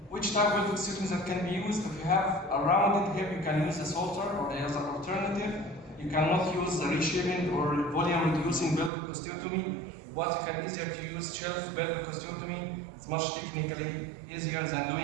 which type of osteotomy that can be used? If you have a rounded hip, you can use the Salter, or as an alternative, you cannot use the reshaping or volume reducing pelvic osteotomy. But you can easier to use shelf pelvic osteotomy. It's much technically easier than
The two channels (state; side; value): drops out; left; at 8.9 s